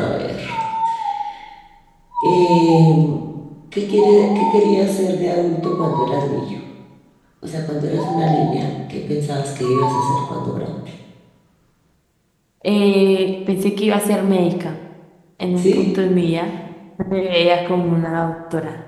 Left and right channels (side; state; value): both; identical; correlation 1.00